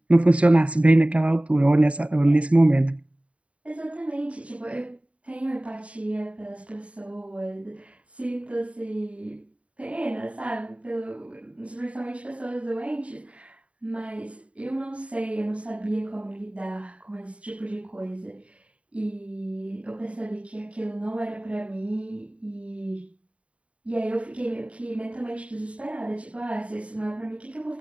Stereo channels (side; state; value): left; late; 0.064 ms